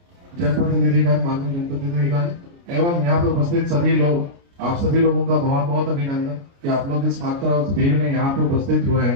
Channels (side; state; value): left; late; 29 ms